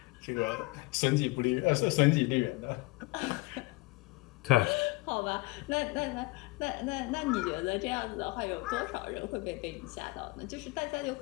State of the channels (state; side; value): quieter; right; 22.4 dB